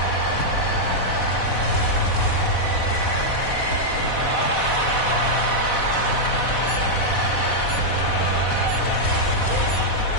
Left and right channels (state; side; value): late; right; 4.1 ms